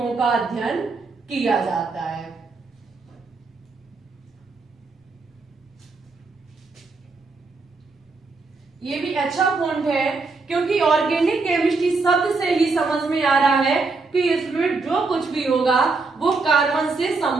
का अध्ययन किया जाता है। ये भी अच्छा पॉइंट है, क्योंकि ऑर्गेनिक केमिस्ट्री शब्द से ही समझ में आ रहा है कि इसमें जो कुछ भी होगा वो कार्बन से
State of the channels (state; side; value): quieter; left; 3.9 dB